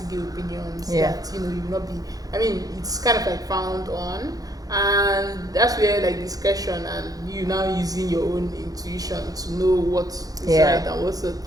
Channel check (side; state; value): left; late; 0.18 ms